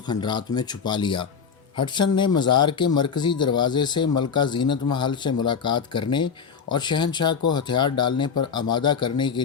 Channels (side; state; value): right; quieter; 6.3 dB